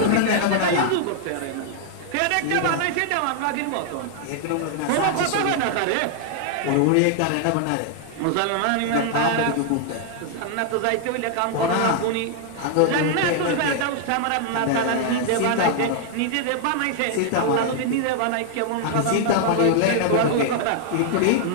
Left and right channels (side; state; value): both; different; correlation 0.00